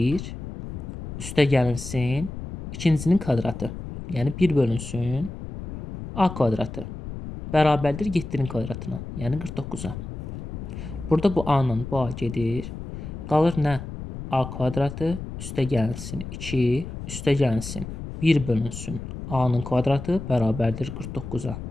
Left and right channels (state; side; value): noise; left; rumble, 9 dB below the sound